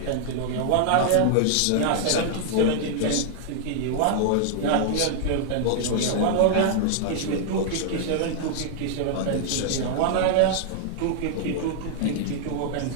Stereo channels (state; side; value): different; both; correlation -0.01